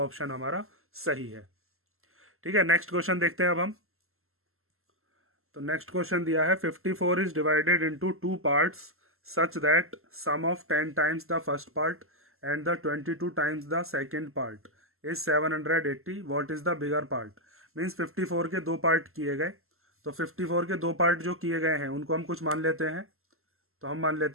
हमारा सही है। ठीक है, नेक्स्ट क्वेश्चन देखते हैं अब हम। तो नेक्स्ट क्वेश्चन दिया है 54 is divided into 2 parts such that sum of 10 times the first part and the 22 times the second part is 780. What is the bigger part? Means 54 के 2 पार्ट किए गए। तो 54 के 2 पार्ट जो किए गए हैं उनको हम कुछ मान लेते हैं। तो हम मान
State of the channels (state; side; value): late; left; 0.62 ms